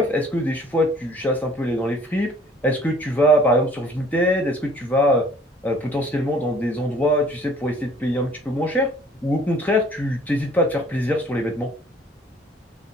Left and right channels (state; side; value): normal; both; correlation 0.55